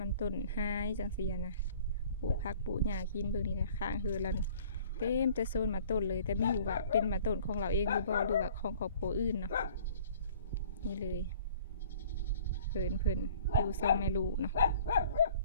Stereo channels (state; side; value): inverted; both; correlation -0.51